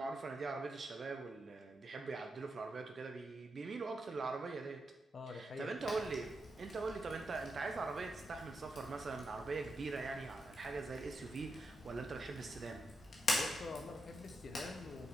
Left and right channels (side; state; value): both; normal; correlation 0.85